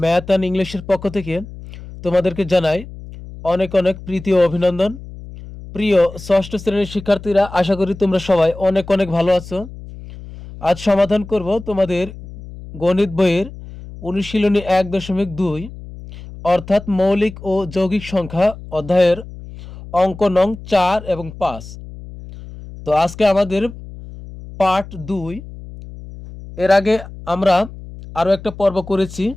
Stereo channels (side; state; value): left; noise; hum, 15 dB below the sound